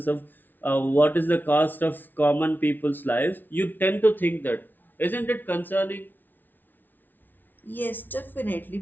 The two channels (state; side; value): late; right; 0.087 ms